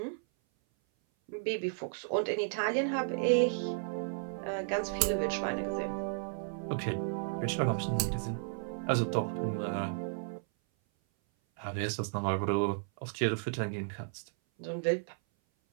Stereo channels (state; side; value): silent; left; 55 dB below the other